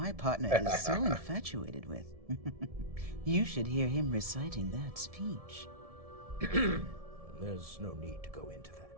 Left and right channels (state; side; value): late; left; 1.7 ms